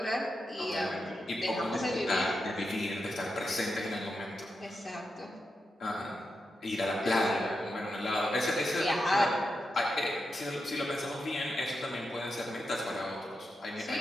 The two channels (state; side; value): normal; both; correlation 0.87